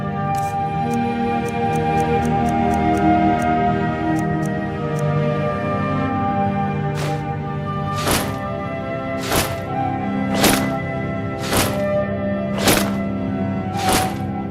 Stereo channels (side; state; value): both; identical; correlation 1.00